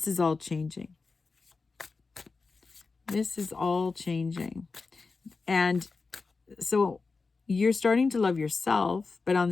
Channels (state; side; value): quieter; right; 4.2 dB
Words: is all changing. This is all changing. And so you're starting to love yourself, but on